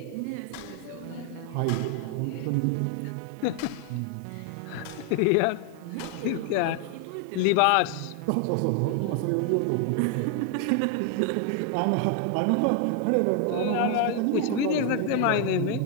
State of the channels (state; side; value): different; both; correlation 0.01